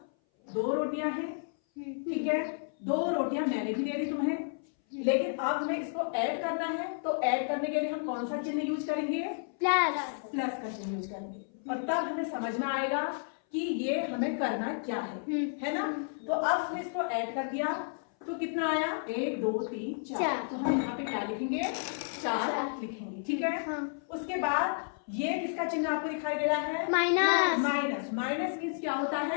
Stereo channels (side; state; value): right; silent; 57 dB below the other